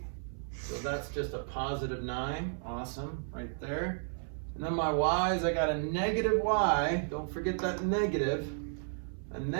So that's just a positive 9. Awesome. Right there. And then my y's, I got a negative y. Don't forget that negative. A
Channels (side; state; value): left; silent; 56 dB below the other